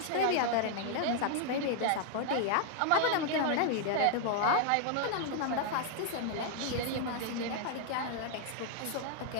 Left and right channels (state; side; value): different; both; correlation 0.00